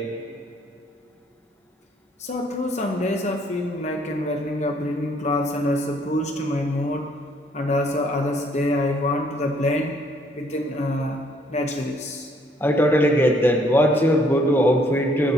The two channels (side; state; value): both; normal; correlation 0.65